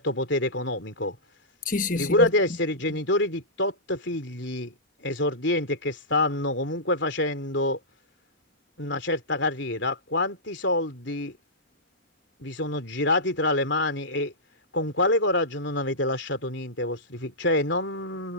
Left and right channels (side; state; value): both; normal; correlation -0.15